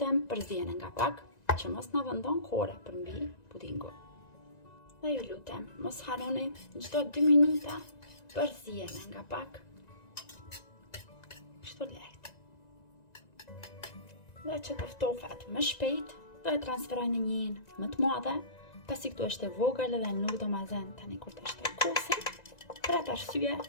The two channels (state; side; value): late; right; 1.9 ms